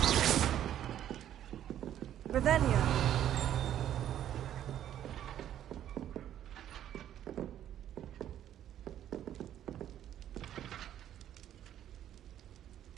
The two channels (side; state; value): left; quieter; 11.1 dB